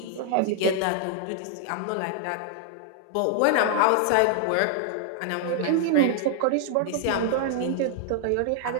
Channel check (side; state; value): both; different; correlation 0.00